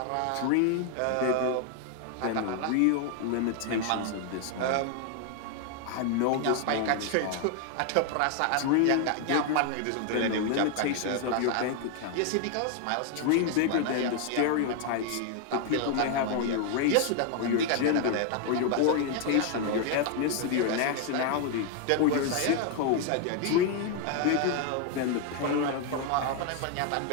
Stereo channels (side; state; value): both; different; correlation 0.00